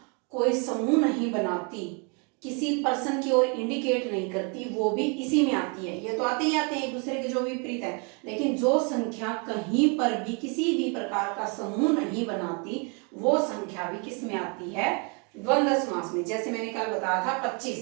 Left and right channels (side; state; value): left; quieter; 34.8 dB